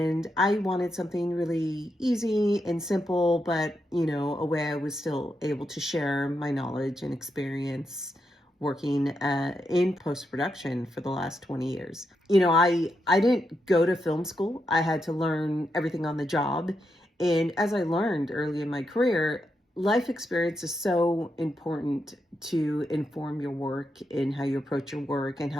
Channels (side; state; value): both; normal; correlation 0.83